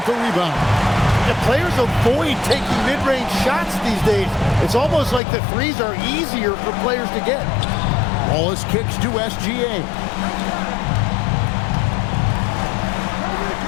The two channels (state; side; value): drops out; right; at 5.2 s